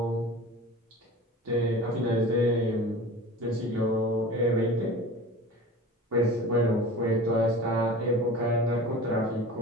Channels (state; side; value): normal; both; correlation 0.37